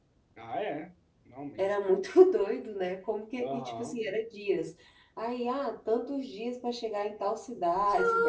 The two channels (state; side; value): identical; both; correlation 1.00